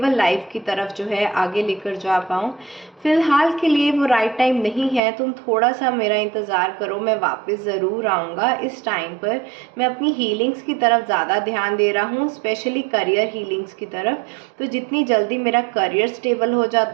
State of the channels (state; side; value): drops out; left; at 5.0 s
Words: लाइफ की तरफ जो है आगे लेकर जा पाऊँ। फ़िलहाल के लिए वो राइट टाइम नहीं है, तुम थोड़ा सा मेरा इंतज़ार करो, मैं वापस ज़रूर आऊँगा। इस टाइम पर मैं अपनी हीलिंग्स की तरफ ज़्यादा ध्यान दे रहा हूँ, स्पेशली करियर हीलिंग्स की तरफ। तो जितनी जल्दी मेरा करियर स्टेबल हो